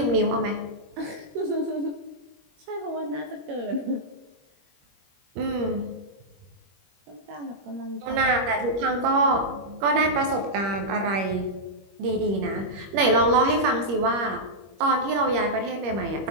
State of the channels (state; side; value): late; left; 21 ms